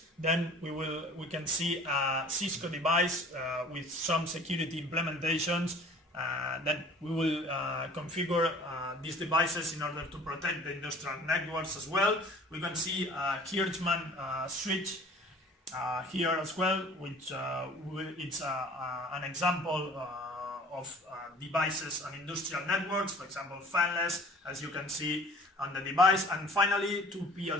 Then we can see a Cisco device with some security implementations. Then we will configure these devices in order to protect the industrial networks as well. We can see a Hirschman switch here as well, which it's an example of devices on industrial networks, for example fanless, as you can see on the device. And finally, 2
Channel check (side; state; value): both; normal; correlation 0.48